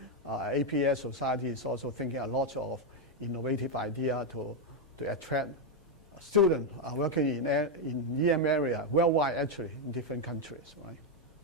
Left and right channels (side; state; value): both; normal; correlation 0.03